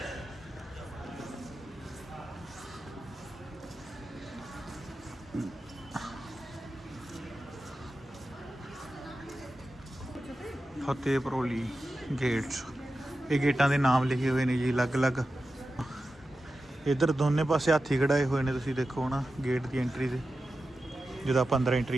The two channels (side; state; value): both; normal; correlation 0.92